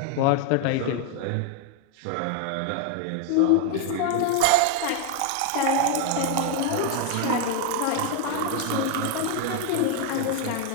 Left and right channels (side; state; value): both; different; correlation 0.00